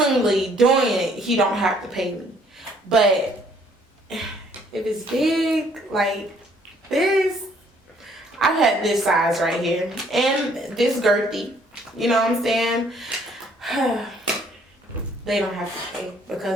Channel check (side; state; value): both; normal; correlation 0.63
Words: doing it, he don't have to pay me. But if it's big, like this, I've had this size right here and this girthy. You know what I'm saying? They don't have to pay